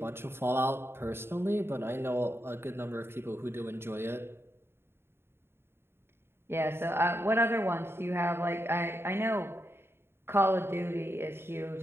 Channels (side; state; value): left; late; 0.11 ms